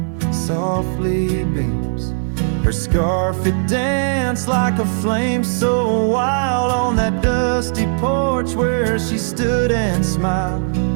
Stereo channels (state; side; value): silent; left; digital silence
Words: softly beams. Her scarf, it danced like a flame so wild on that dusty porch where she stood and smiled.